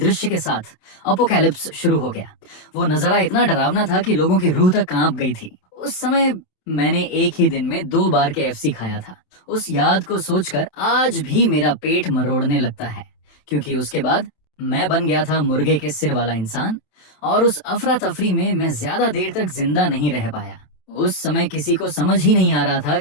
के साथ अपोकैलिप्स शुरू हो गया। वो नजारा इतना डरावना था कि लोगों की रूह तक कांप गई थी। उस समय मैंने एक ही दिन में 2 बार KFC खाया था। उस याद को सोचकर आज भी मेरा पेट मरोड़ने लगता है, क्योंकि उसके बाद मैं बन गया था मुर्गे के सिर वाला इंसान और उस अफरा तफरी में मैं ज्यादा देर तक जिंदा नहीं रह पाया। उस समय किसी को समझ ही नहीं आ रहा था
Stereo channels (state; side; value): late; right; 27 ms